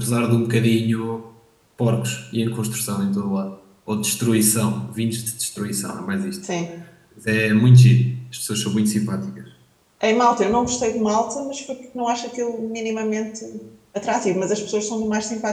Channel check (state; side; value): identical; both; correlation 1.00